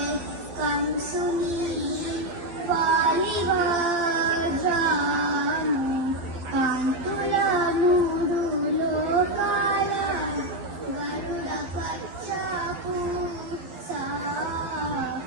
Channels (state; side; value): late; left; 12 ms